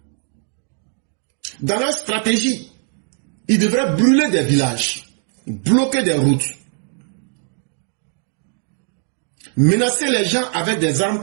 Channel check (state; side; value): silent; left; 56 dB below the other